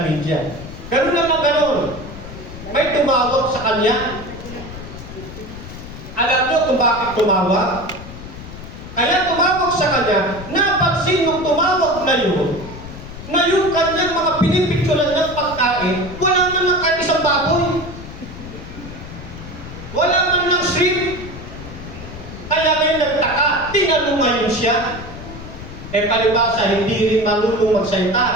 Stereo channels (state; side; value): noise; left; rumble, 13 dB below the sound